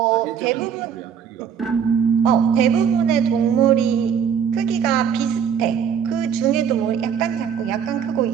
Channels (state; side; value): quieter; left; 7.8 dB